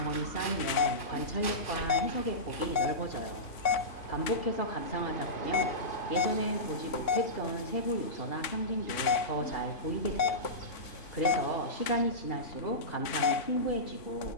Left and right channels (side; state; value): right; late; 3.5 ms